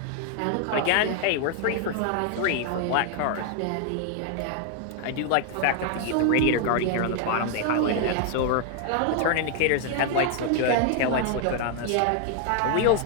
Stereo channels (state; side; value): different; both; correlation 0.00